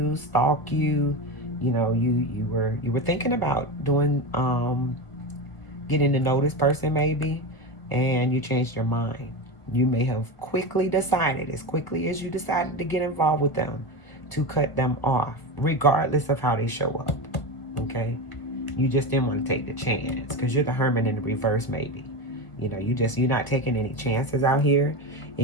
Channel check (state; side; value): late; right; 1.7 ms